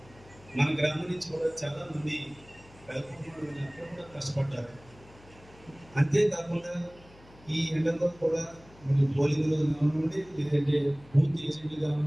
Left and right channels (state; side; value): noise; left; hum, 24 dB below the sound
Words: మన గ్రామం నుంచి కూడా చాలా మంది అక్కడ కూడా కష్టపడ్డారు. అంతేకాకుండా ఈ ఎండలో కూడా మరి పోలింగ్లో కానివ్వండి, లేదంటే బూత్ ఏజెంట్లు